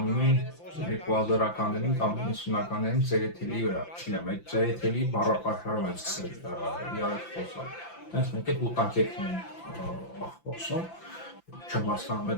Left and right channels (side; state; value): right; late; 5.9 ms